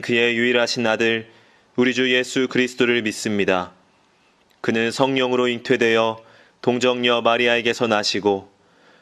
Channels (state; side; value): identical; both; correlation 1.00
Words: 그의 유일하신 아들, 우리 주 예수 그리스도를 믿습니다. 그는 성령으로 잉태되어 동정녀 마리아에게서 나시고